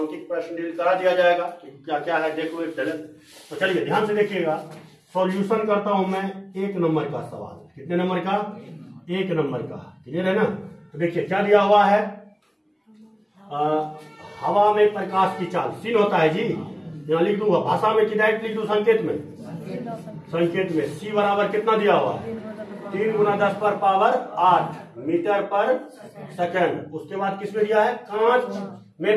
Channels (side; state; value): both; identical; correlation 1.00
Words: प्रश्न डील करा दिया जाएगा कि क्या क्या है, देखो एक चले। तो चलिए ध्यान से देखिएगा, सॉल्यूशन करता हूं मैं 1 नंबर का सवाल। कितने नंबर का, 1 नंबर का। क्लियर है ना। तो देखिए क्या दिया हुआ है, हवा में प्रकाश की चाल सीन होता है जी, यहाँ लिख दूंगा, भाषा में कि डायरेक्ट लिख दूं, संकेत में, संकेत में सी बराबर कितना दिया हुआ है, 3 × 10⁸ मीटर पर सेकंड। उसके बाद किसमें दिया है, कांच